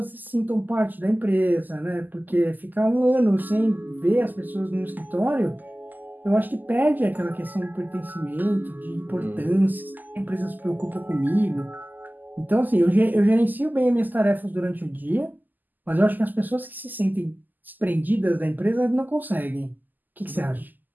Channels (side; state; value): left; late; 0.086 ms